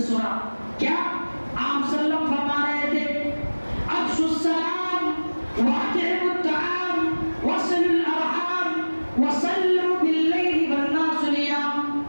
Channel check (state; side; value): inverted; both; correlation -1.00